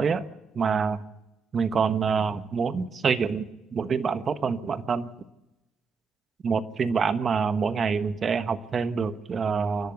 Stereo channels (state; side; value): quieter; left; 5.4 dB